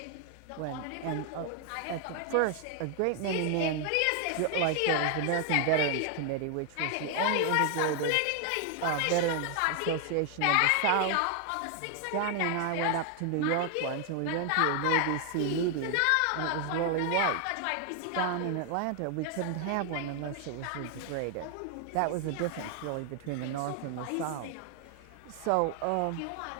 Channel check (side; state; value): both; different; correlation 0.00